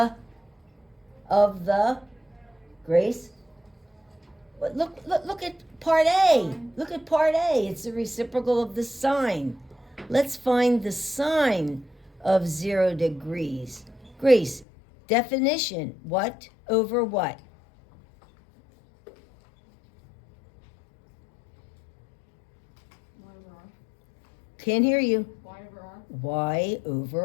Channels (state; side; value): drops out; right; at 14.7 s